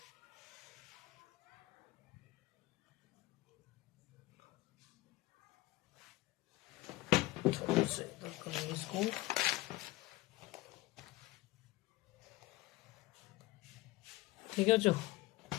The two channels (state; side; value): quieter; right; 19.2 dB